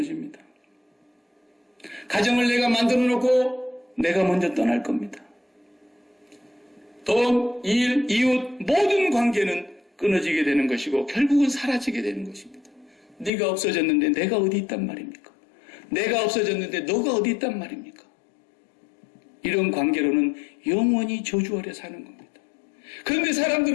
가정을 내가 만들어 놓고 내가 먼저 떠날 겁니다. 돈, 일, 이웃 모든 관계는 끊어지게 되는 것이고 결국은 사라지게 되는 것입니다. 네가 없어졌는데 내가 어디 있단 말입니까? 내가 없어졌는데 너가 어디 있단 말입니까? 이런 관계로는 영원히 저주 아래 사는 겁니다. 그런데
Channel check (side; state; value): right; drops out; at 13.3 s